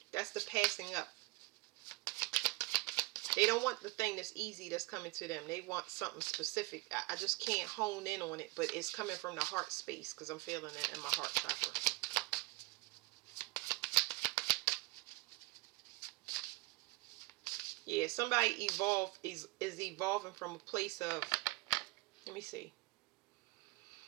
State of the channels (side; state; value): left; quieter; 23.2 dB